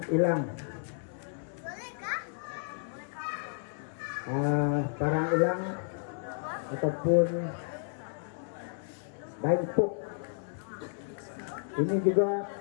ilang. Parang ilang ataupun daipuk. Ini juga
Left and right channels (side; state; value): right; silent; digital silence